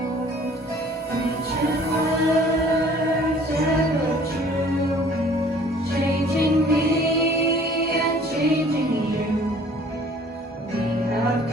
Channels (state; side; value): normal; both; correlation 0.53